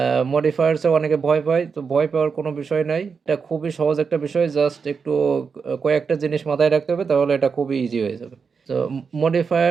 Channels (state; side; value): quieter; left; 5.6 dB